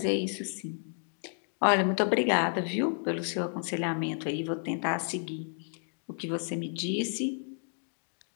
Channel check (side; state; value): right; silent; 57 dB below the other